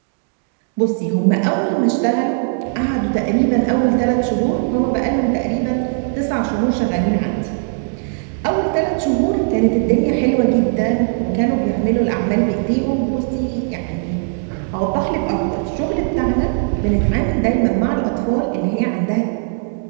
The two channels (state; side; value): silent; left; digital silence